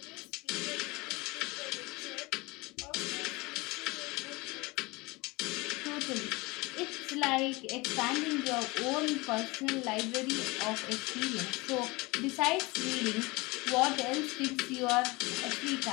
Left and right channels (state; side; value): quieter; right; 24.2 dB